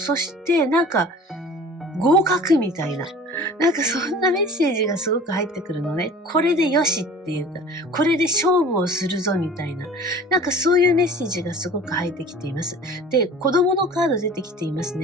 してなんか合格みたいな。なんかそんなメッセージがすごく入ってくるのね。これでよしっていうか、これで勝負をするぞみたいな。なんかそういうメッセージがすごく入ってきています。で、子供のカード出てきています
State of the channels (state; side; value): normal; both; correlation 0.43